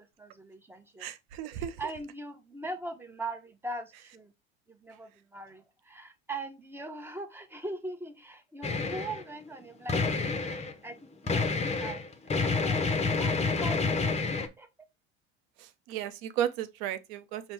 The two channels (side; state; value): both; normal; correlation 0.44